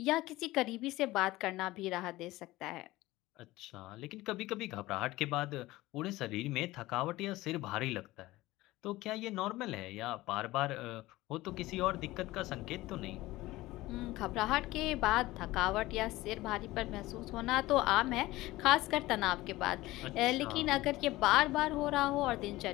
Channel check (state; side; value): quieter; right; 18.3 dB